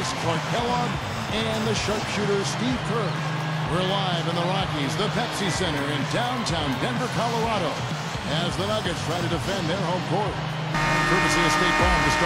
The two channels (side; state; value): both; identical; correlation 1.00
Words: Clark Kellogg and the sharpshooter Steve Kerr. We're live in the Rockies, the Pepsi Center in downtown Denver, Colorado, as the Nuggets try to defend their home court. Courtesy of State Farm, the